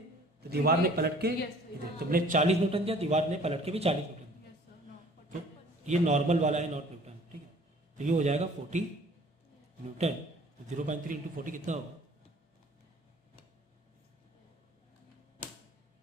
तो दीवार ने पलट के इधर तुमने 40 न्यूटन दिया, दीवार ने पलट के भी 40 न्यूटन दिया, तो ये नॉर्मल वाला है, नॉट न्यूटन, ठीक है। तो ये हो जाएगा 40 न्यूटन, तो 0.3 इंटू 40 कितना होगा,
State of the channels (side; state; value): both; normal; correlation 0.52